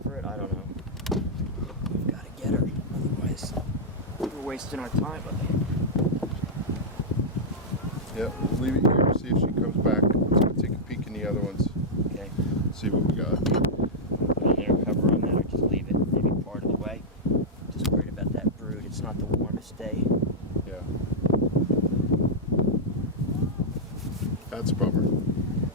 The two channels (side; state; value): both; normal; correlation -0.05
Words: it. I don't know. We've got to get her. Otherwise, we're wasting our time up here. Yeah, we'll leave it here, see if she comes back. Let's go take a peek in the other ones, Okay. see what we got. Put an inner cover on that or just leave it maybe part of the way. Just worried about that brood. It's not the warmest day. Yeah. That's a bummer.